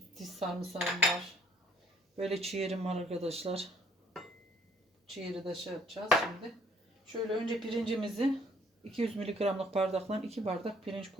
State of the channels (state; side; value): normal; both; correlation 0.61